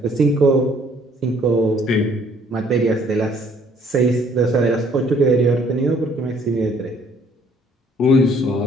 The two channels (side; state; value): both; normal; correlation 0.61